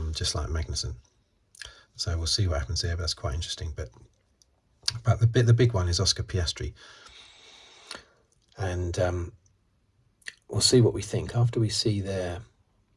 Just like Magnussen. So we'll see what happens there, but that's quite interesting. But the big one is Oscar Piastri. And we'll see what we think after we see the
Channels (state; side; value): identical; both; correlation 1.00